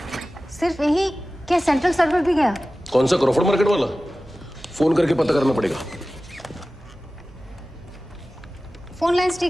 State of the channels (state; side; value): normal; both; correlation 0.96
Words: सिर्फ यही क्या सेंट्रल सर्वर भी गया? कौन सा, क्रॉफर्ड मार्केट वाला? फोन करके पता करना पड़ेगा। फोन लाइंस